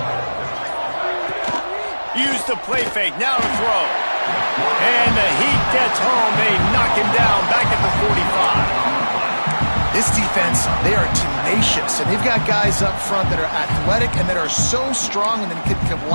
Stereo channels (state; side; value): inverted; both; correlation -1.00